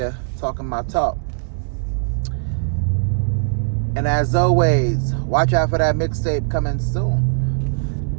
talking my talk. And as always, watch out for that mixtape coming soon.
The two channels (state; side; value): silent; left; 66 dB below the other